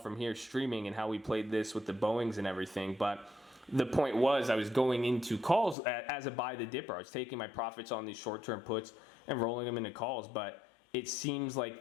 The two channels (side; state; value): right; drops out; at 5.8 s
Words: here streaming and how we played this with the Boeings and everything. But the point was, I was going into calls as a buy the dipper. I was taking my profits on these short-term puts and rolling them into calls, but it seems